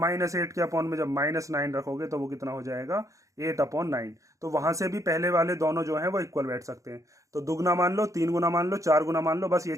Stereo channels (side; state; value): left; late; 0.15 ms